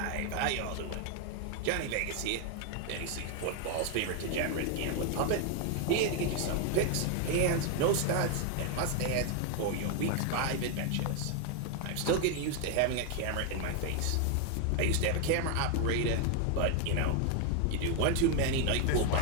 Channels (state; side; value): different; both; correlation 0.01